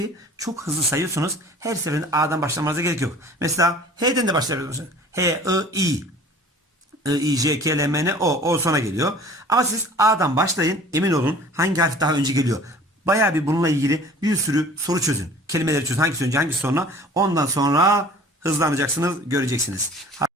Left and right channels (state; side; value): normal; both; correlation 0.47